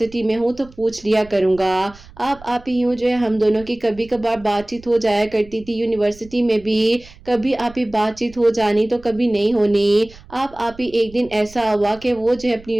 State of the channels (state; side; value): noise; right; rumble, 22 dB below the sound